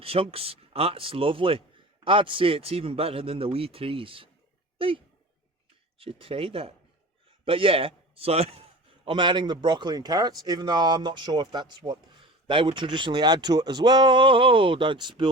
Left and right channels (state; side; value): normal; both; correlation 0.36